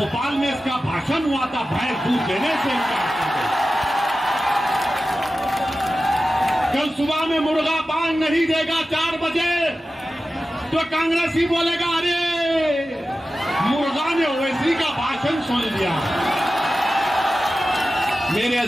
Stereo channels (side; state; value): both; normal; correlation 0.94